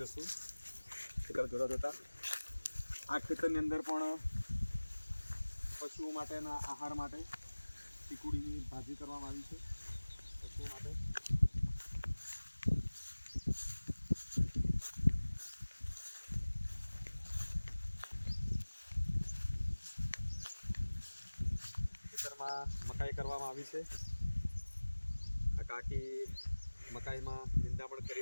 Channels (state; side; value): inverted; both; correlation -1.00